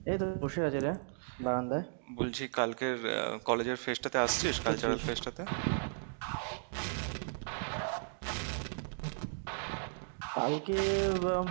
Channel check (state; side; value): silent; left; digital silence